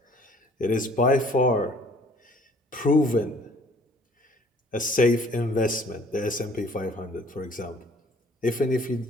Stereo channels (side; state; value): both; normal; correlation 0.56